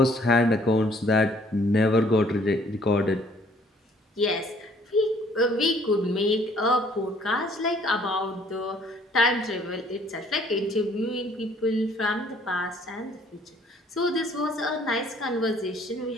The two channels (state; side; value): normal; both; correlation 0.60